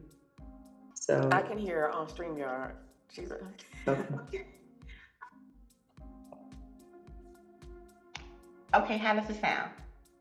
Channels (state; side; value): identical; both; correlation 1.00